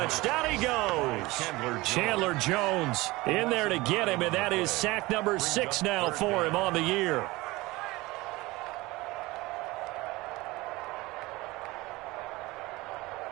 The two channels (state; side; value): quieter; left; 21.0 dB